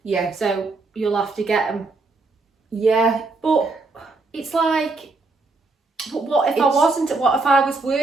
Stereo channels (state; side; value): quieter; left; 3.6 dB